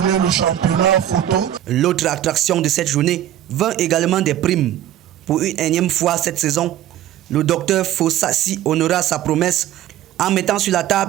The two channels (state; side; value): quieter; left; 12.1 dB